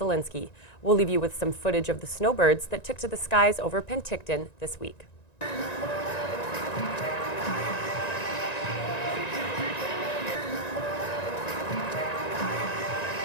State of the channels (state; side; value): late; right; 1.9 ms